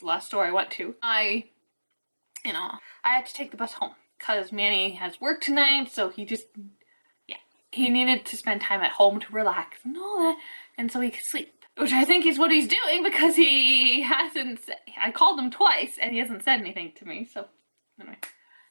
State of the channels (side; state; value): both; inverted; correlation -1.00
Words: last store I went to, I had to take the bus home because Manny has work tonight, so he needed to spend time at home to relax and all that, and so he could sleep. Which I think is what he's doing, because he hasn't I called him twice and he hasn't said anything to me, so anyway.